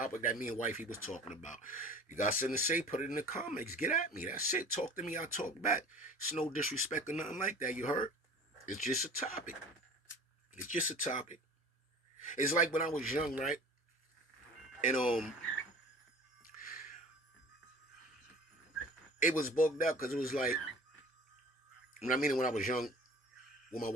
that me and wifey was talking about. You got something to say, put it in the comments. Get at me. That's it. Talk to me, I talk back. It's no disrespect or nothing like that, you heard? It's just a topic. It's just a topic. It's like when I was young, right? And it was bugged up because it was like, when I was young with my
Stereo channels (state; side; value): normal; both; correlation 0.43